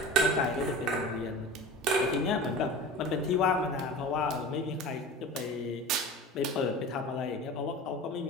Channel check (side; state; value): both; normal; correlation 0.35